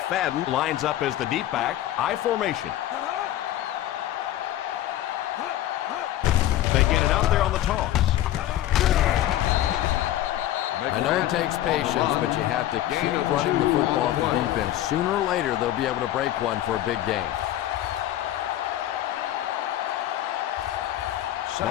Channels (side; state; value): right; quieter; 13.4 dB